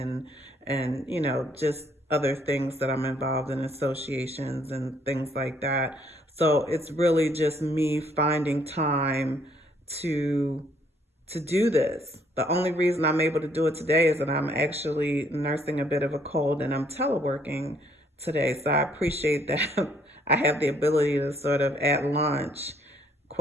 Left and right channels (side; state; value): both; normal; correlation 0.66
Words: just other things that I'm involved in, associations and things like that. So it's really just me finding time to do this. The only reason I'm able to do it today is that I'm actually nursing a bit of a cold and I'm teleworking today. So I appreciate that I have the ability to sort of at lunch,